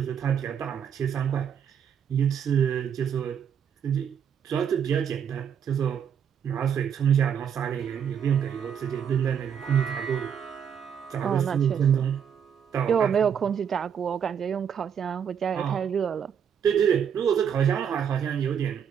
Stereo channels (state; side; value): quieter; left; 8.0 dB